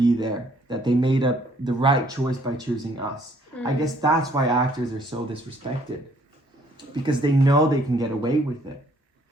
there, that they made up the right choice by choosing us. I guess that's why actors are so disrespected, because they know they can get away with it.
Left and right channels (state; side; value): normal; both; correlation 0.63